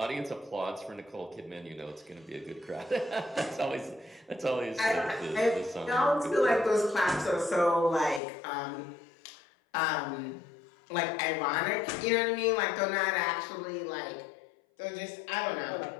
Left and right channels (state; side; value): drops out; right; at 8.2 s